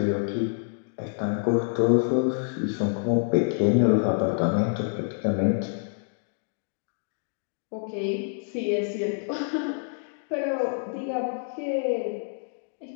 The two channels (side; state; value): right; silent; digital silence